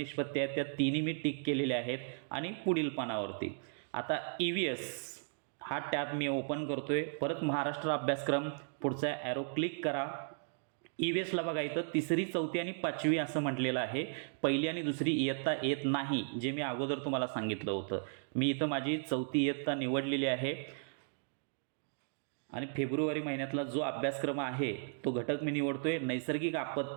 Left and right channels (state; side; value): silent; left; digital silence